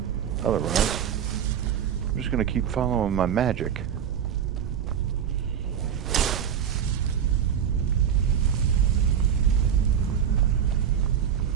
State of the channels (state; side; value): quieter; left; 8.6 dB